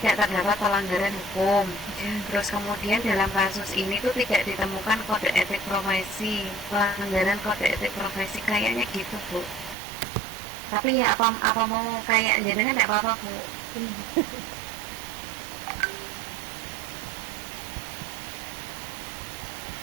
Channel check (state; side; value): drops out; left; at 9.8 s